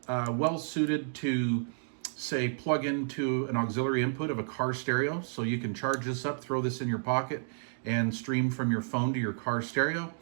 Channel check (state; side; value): silent; left; digital silence